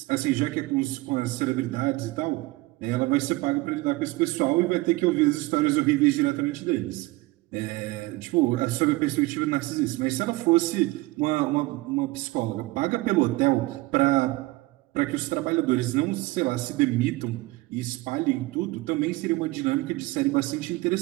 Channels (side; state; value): left; quieter; 21.3 dB